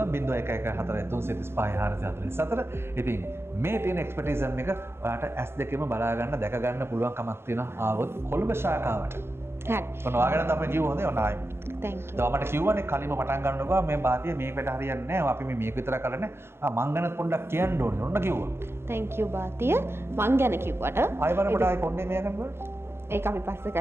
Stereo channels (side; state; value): left; late; 0.12 ms